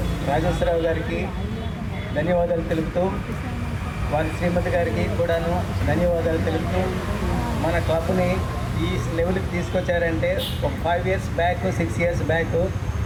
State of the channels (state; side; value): identical; both; correlation 1.00